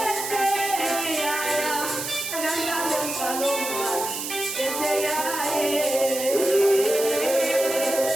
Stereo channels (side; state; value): right; noise; hiss, 5 dB below the sound